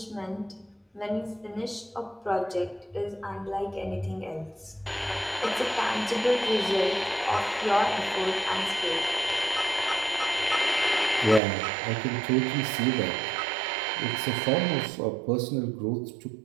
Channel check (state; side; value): drops out; left; at 11.4 s